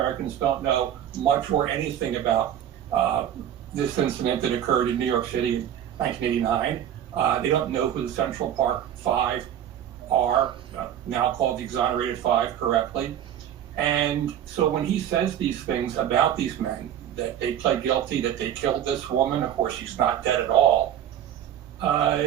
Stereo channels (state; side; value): quieter; left; 10.4 dB